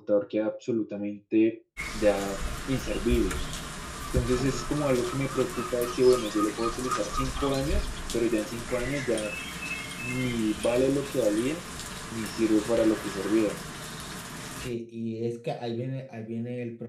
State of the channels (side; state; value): both; identical; correlation 1.00